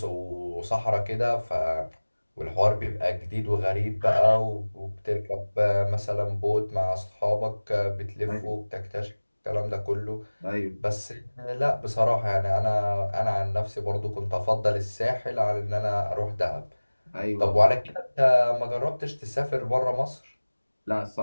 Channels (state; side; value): inverted; both; correlation -1.00